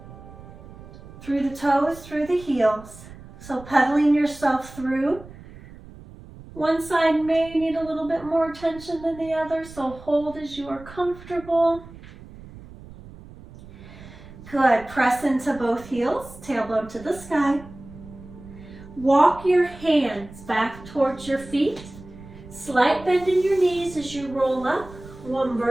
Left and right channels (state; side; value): noise; right; rumble, 18 dB below the sound